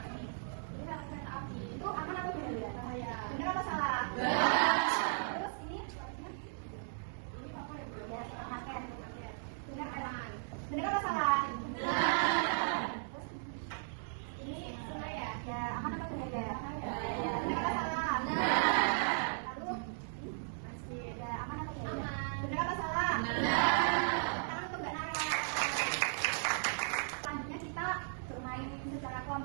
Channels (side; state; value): left; silent; digital silence